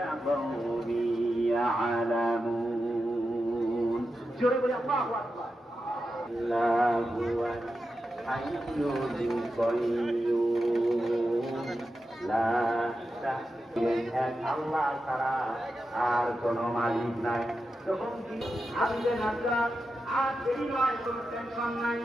জোরে বলে আল্লাহু আকবার। আল্লাহু হাইয়্যুল কাইয়্যুম লা আল্লাহ ছাড়া আর কোনো মালিক নাই। তখন কি আসবে নাজরা আর দেরি নয়, কোনো টেনশন নাই,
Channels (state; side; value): normal; both; correlation 0.90